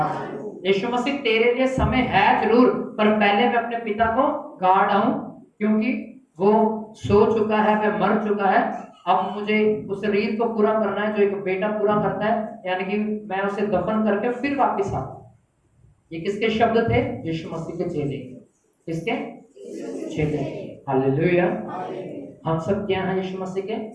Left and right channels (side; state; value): both; identical; correlation 1.00